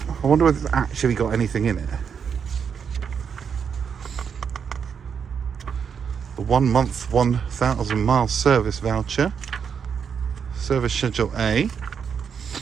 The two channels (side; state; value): left; quieter; 6.9 dB